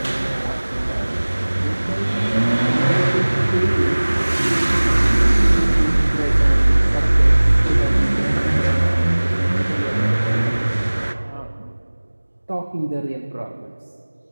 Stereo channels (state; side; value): inverted; both; correlation -1.00